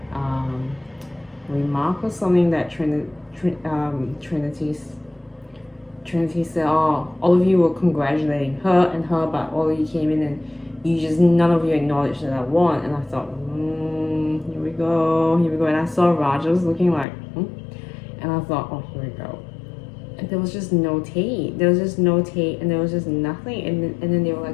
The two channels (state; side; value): drops out; right; at 17.1 s